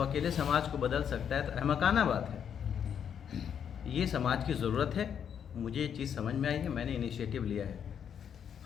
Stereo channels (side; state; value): right; quieter; 8.2 dB